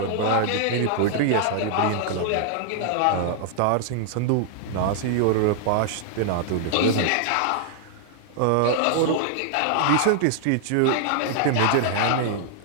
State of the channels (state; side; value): different; both; correlation -0.01